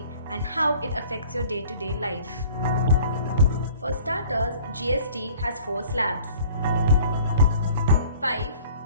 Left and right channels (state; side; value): inverted; both; correlation -0.50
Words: and how it affects your day-to-day life. For starters, GST has 4 slabs: 5,